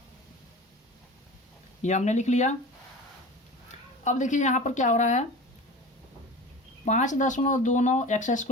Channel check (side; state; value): both; normal; correlation 0.35